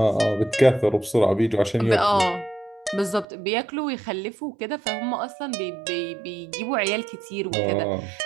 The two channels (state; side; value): drops out; left; at 3.2 s